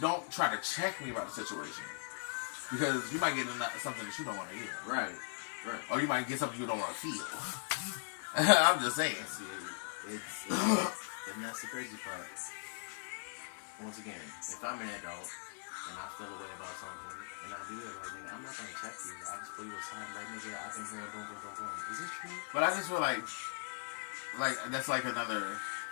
try to check me about the situation because you might get something that you don't want to hear. Right. Right. Or you might get something you don't want to feel. I'm just saying. And that's the crazy part. Once again, if I'm an adult and I feel a way about something and I do it, like, nigga, I'm not gonna check you. I just pull you aside and like, nigga, I've been hearing boom, boom, boom, boom. Is this true? But I just feel like that's like another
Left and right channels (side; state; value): right; silent; digital silence